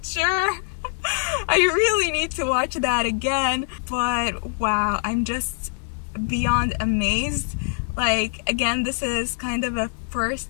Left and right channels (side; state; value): right; silent; 63 dB below the other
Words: sure. I really need to watch that again. But wow, I'm just beyond amazed. Like, again, this is kind of a first